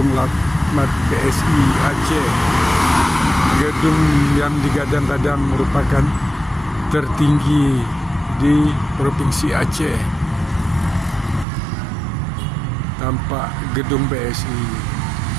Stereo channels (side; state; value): left; drops out; at 11.5 s